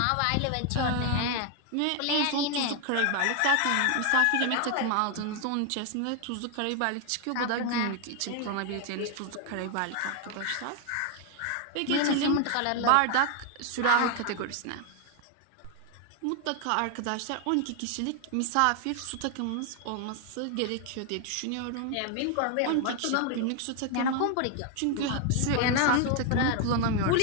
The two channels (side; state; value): both; different; correlation 0.00